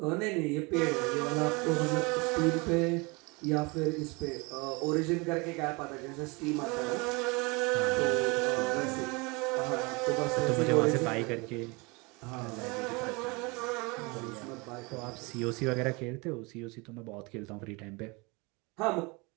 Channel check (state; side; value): quieter; left; 27.3 dB